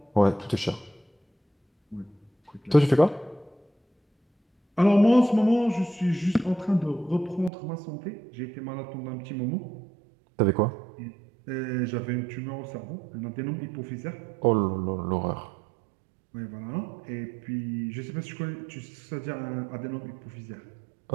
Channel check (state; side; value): drops out; left; at 7.5 s